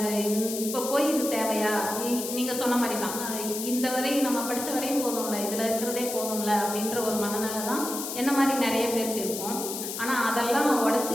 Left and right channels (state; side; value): noise; left; hiss, 6 dB below the sound